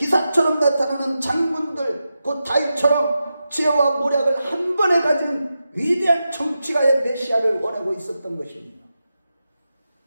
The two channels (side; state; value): both; inverted; correlation -0.90